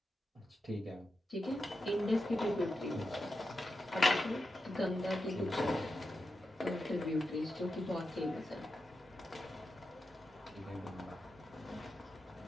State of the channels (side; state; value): both; normal; correlation 0.89